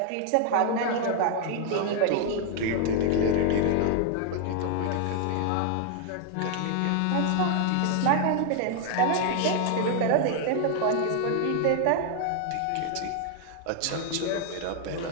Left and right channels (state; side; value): different; both; correlation 0.00